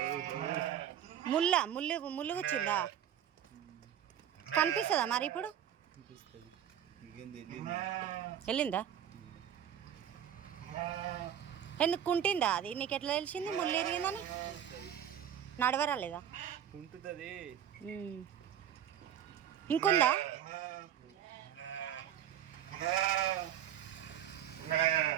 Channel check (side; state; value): left; quieter; 10.0 dB